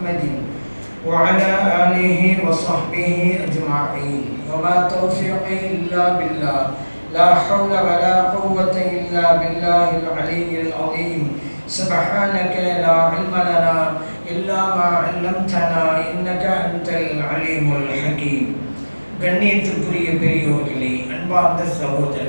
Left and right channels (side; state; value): both; inverted; correlation -1.00